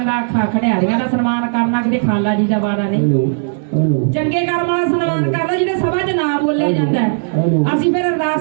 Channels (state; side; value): silent; left; digital silence